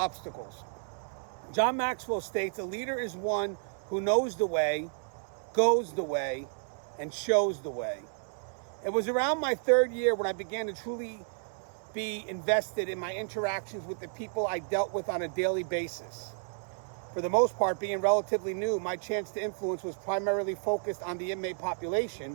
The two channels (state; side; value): silent; left; 57 dB below the other